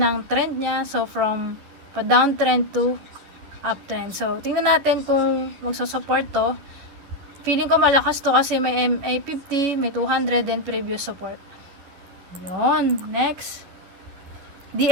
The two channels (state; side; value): late; left; 11 ms